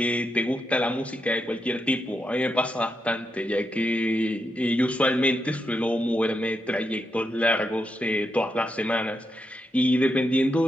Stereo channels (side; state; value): both; normal; correlation 0.83